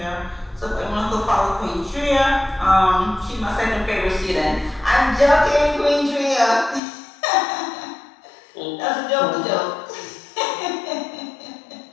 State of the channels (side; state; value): right; drops out; at 6.8 s